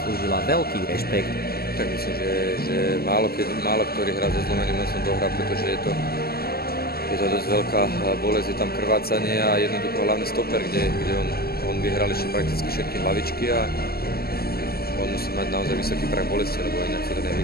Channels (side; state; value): right; late; 0.45 ms